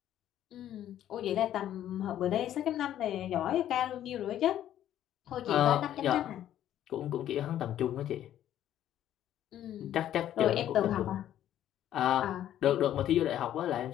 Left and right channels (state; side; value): quieter; right; 11.6 dB